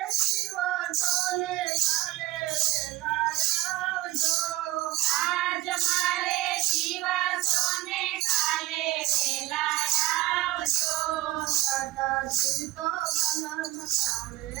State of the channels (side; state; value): left; quieter; 18.4 dB